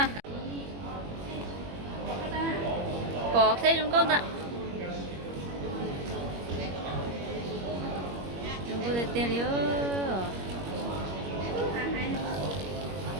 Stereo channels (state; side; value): late; left; 21 ms